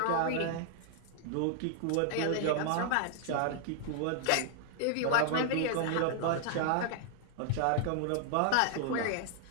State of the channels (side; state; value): both; different; correlation 0.00